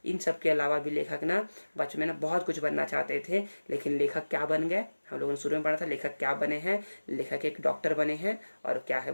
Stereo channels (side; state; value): both; inverted; correlation -1.00